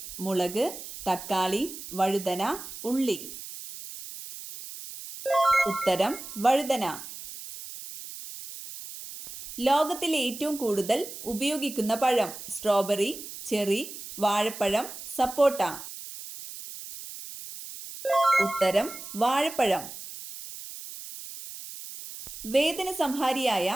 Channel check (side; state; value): right; noise; hiss, 12 dB below the sound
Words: മുളക്, തക്കാളി, വഴുതന, ഉള്ളി. ഉത്തരം വഴുതന. ലോകത്തിലെ ഏറ്റവും കൂടുതൽ ഉപയോഗിക്കുന്ന പഴം: സ്ട്രോബെറി, ചെറി, വാഴപ്പഴം, സപ്പോട്ട. ഉത്തരം വാഴപ്പഴം. വേദന സംഹാരിയായ